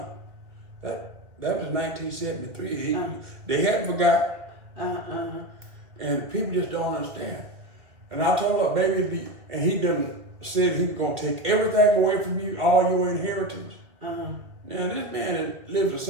that was 1973. They hadn't forgot. And people just don't understand. And I told her, baby, and he done said he was going to take everything away from you, all your inheritance. Now, this man that lives in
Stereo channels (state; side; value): late; left; 2.1 ms